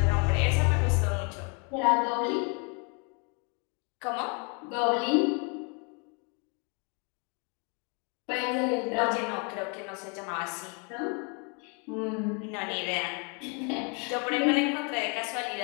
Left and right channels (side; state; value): right; quieter; 34.9 dB